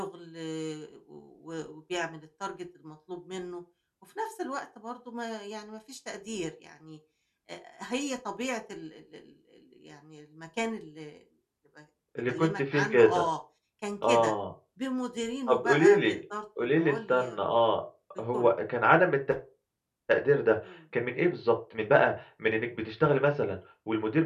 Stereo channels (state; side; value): identical; both; correlation 1.00